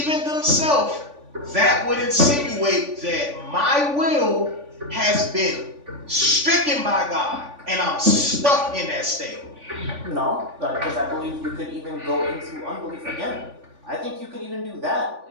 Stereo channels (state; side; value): late; left; 3.5 ms